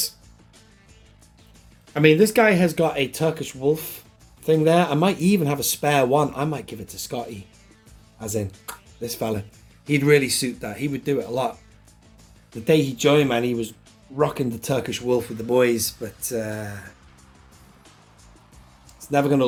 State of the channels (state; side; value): identical; both; correlation 1.00